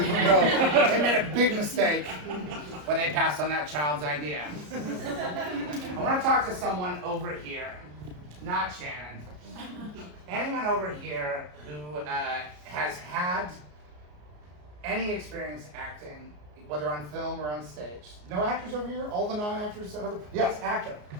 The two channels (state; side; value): late; left; 33 ms